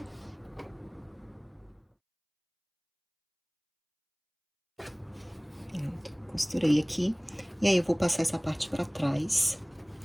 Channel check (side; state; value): both; identical; correlation 1.00